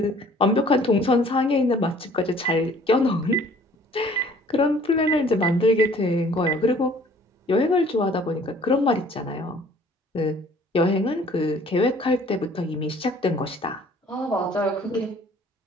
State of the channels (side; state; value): both; normal; correlation 0.55